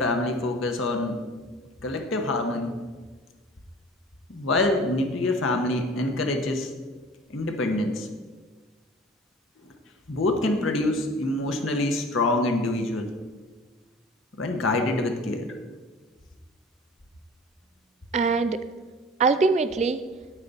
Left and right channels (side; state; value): both; normal; correlation 0.44